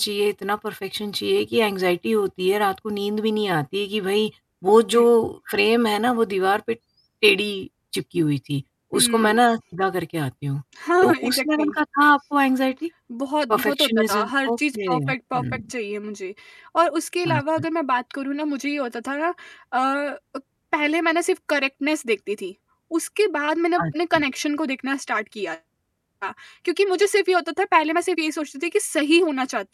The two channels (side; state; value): both; identical; correlation 1.00